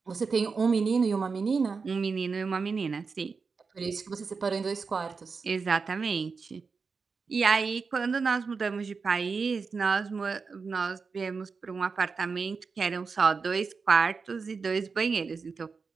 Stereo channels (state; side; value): quieter; left; 4.9 dB